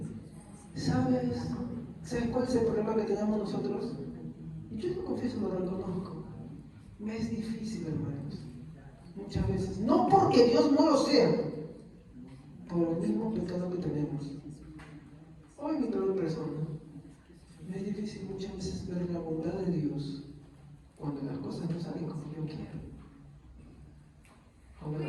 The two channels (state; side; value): identical; both; correlation 1.00